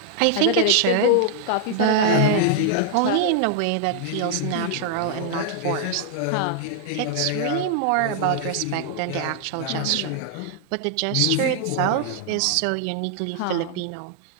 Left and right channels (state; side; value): different; both; correlation 0.00